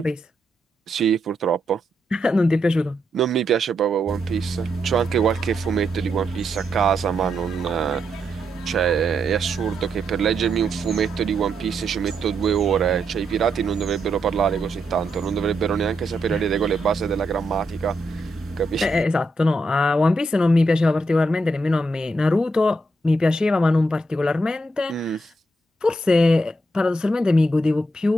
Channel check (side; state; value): both; normal; correlation 0.81